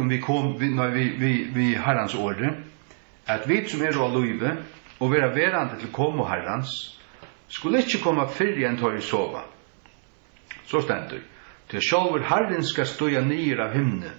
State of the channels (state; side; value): silent; left; 61 dB below the other